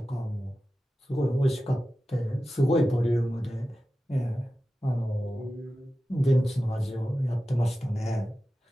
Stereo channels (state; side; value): normal; both; correlation 0.94